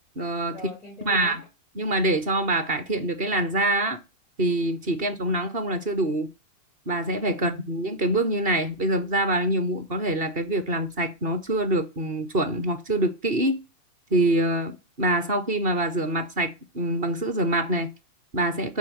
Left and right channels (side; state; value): left; late; 2.7 ms